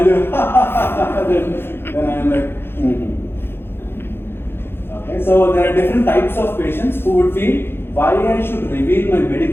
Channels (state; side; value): late; right; 0.11 ms